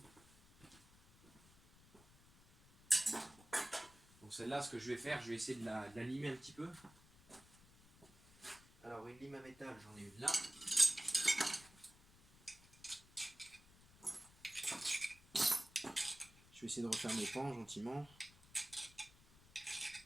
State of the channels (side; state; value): left; noise; rumble, 25 dB below the sound